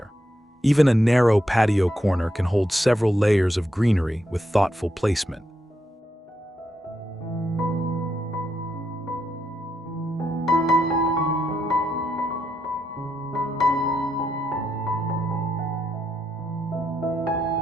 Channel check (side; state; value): both; normal; correlation 0.81